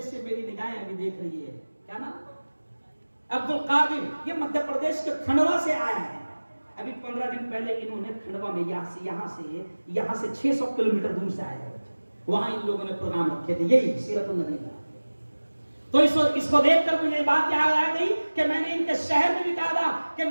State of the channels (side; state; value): both; inverted; correlation -1.00